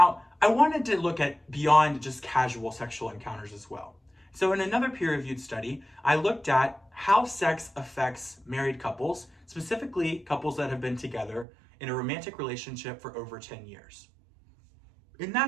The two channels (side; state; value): left; drops out; at 11.5 s